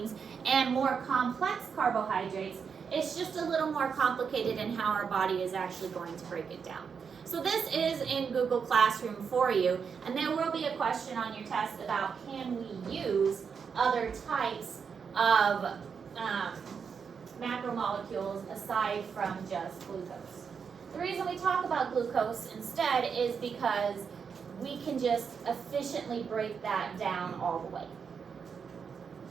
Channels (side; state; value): left; quieter; 6.3 dB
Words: and more complex carbohydrates, it's just a little more complicated in how our body is actually going to break it down. So this is in Google Classroom for you, and there will be a question on your test about can we use other types of macromolecules aside from just glucose. The reason we talk about glucose instead is because we can just efficiently break that down all the way.